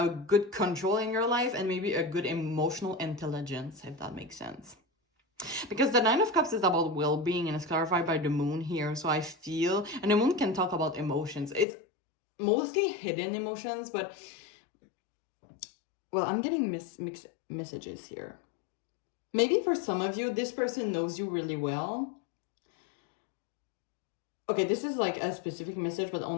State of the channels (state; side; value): drops out; right; at 11.7 s